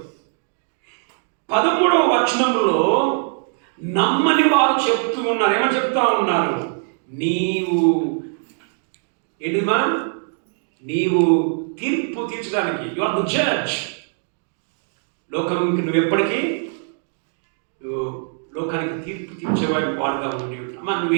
13వ వచనంలో నమ్మని వారు చెప్తూ ఉన్నారు. ఏమని చెప్తా ఉన్నారు? నీవు ఏంటిమా? నీవు తీర్పు తీర్చడానికి, యు ఆర్ ద జడ్జ్. లోకానికి నువ్వు ఎప్పటికీ నువ్వు లోకానికి తీర్పు తీర్చేవాడి వాడుగా ఉండి అమ్మా, నువ్వు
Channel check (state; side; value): silent; left; 62 dB below the other